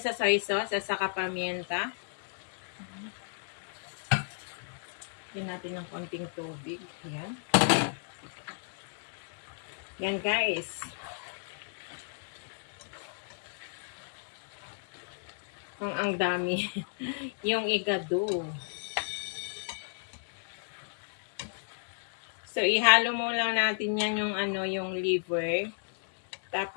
sa soy sauce at saka pamienta. Lagyan natin ng konting tubig. Yan. Yan, guys. Ang dami. Yung igado. So, ihalo mo lang natin yan yung ano, yung liver.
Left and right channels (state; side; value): silent; right; digital silence